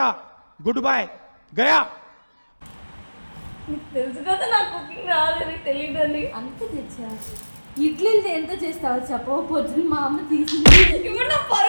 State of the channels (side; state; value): both; inverted; correlation -1.00